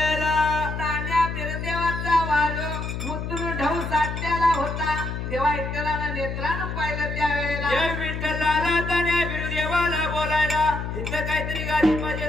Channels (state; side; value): noise; left; hum, 5 dB below the sound